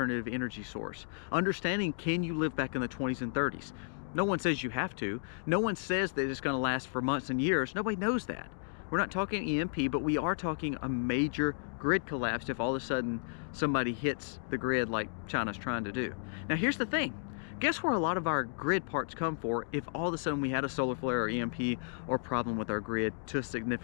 energy source, understanding, can you live back in the 20s and 30s? No one says you have to. No one says that it's going to last for months and years. Nobody knows that. We're not talking EMP, but we are talking a major grid collapse if all of a sudden somebody hits the grid like China's trying to do. Now here's the thing. Guess where a lot of our grid parts come for if all of a sudden we had a solar flare or EMP or problem with our grid to a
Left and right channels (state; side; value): silent; right; digital silence